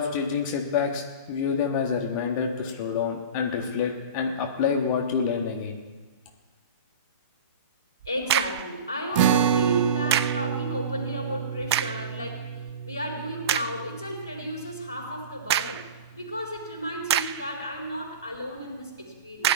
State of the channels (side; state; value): both; inverted; correlation -0.33